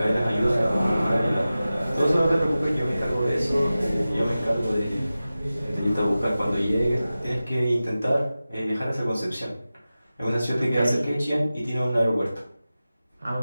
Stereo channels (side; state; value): both; inverted; correlation -0.95